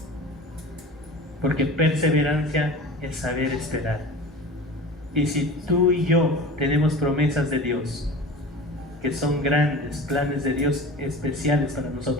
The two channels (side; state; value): both; normal; correlation 0.36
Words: Porque perseverancia es saber esperar. Y si tú y yo tenemos promesas de Dios, que son grandes, planes de Dios especiales para